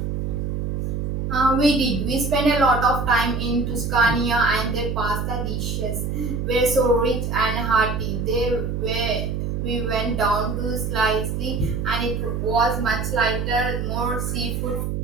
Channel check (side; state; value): right; noise; hum, 2 dB below the sound